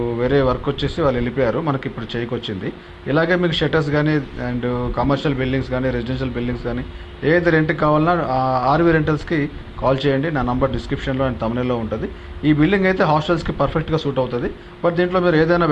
వేరే వర్క్ వచ్చేసి వాళ్ళు వెళ్ళిపోయారు, మనకి ఇప్పుడు చేయికొచ్చింది. ఇలాగే మీకు షట్టర్స్ కానీ అండ్ కమర్షియల్ బిల్డింగ్స్ కానీ రెసిడెన్షియల్ బిల్డింగ్స్ కానీ ఏది రెంట్కి కావాలన్నా ఆర్వి రెంటల్స్కి కాల్ చేయండి. నా నంబర్ డిస్క్రిప్షన్లో అండ్ తమిళలో ఉంటుంది. ఈ బిల్డింగ్ అయితే హాస్టల్స్కి పర్ఫెక్ట్గా సూట్ అవుతుంది. బట్ దీంట్లో మీరు ఏదైనా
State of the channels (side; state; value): both; identical; correlation 1.00